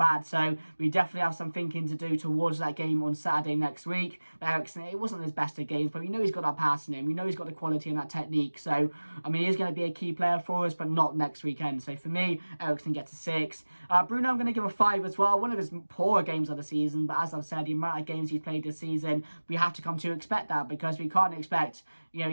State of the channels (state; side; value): inverted; both; correlation -1.00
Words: So we definitely have some thinking to do towards that game on Saturday next week. But Eriksen, it wasn't his best of games, but we know he's got that pass in him. We know he's got the quality and that technique. So, he is going to be a key player for us, but not next weekend. So for me, Eriksen gets a 6. Bruno, I'm going to give a 5 as well. One of his poorer games of the season, but as I've said, the amount of games he's played this season, we have to come to expect that, because we can't expect,